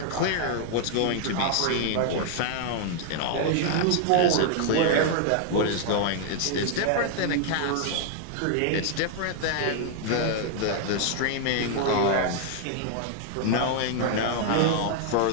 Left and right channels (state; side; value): different; both; correlation 0.00